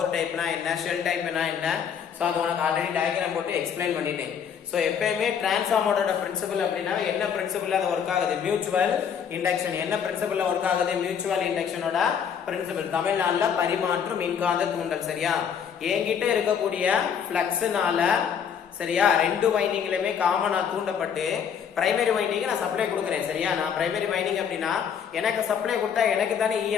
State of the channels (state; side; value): quieter; right; 7.7 dB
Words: டைப்னா என்ன, ஷெல் டைப்னா என்ன. ஸோ அது உனக்கு ஆல்ரெடி டயக்ராம் போட்டு எக்ஸ்பிளைன் பண்ணிட்டேன். ஸோ எப்பயுமே டிரான்ஸ்ஃபார்மரோட பிரின்சிபல் அப்படின்னா என்ன பிரின்சிபல் அது ஒர்க் ஆகுது, மியூச்சுவல் இண்டக்ஷன். என்ன பிரின்சிபல் ஒர்க் ஆகுது, மியூச்சுவல் இண்டக்ஷனோட பிரின்சிபல். தமிழ்நாடுல பரிமாற்று மின்காந்த தூண்டல். சரியா, என்கிட்ட இருக்கக்கூடிய பிளக்ஸ்னால சரியா ரெண்டு வைண்டிங்லயுமே காமனா தூண்டப்பட்டு பிரைமரி வைண்டிங் நான் சப்ளை கொடுக்குறேன். சரியா, நான் பிரைமரி வைண்டிங் அப்படின்னா எனக்கு சப்ளை கொடுத்தா எனக்கு தானே